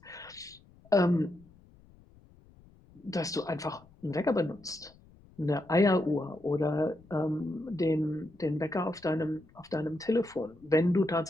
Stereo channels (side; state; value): left; noise; rumble, 26 dB below the sound